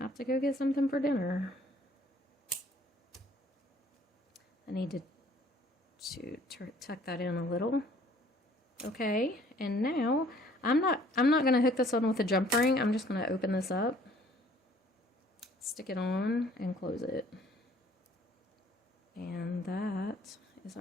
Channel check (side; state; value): both; normal; correlation 0.58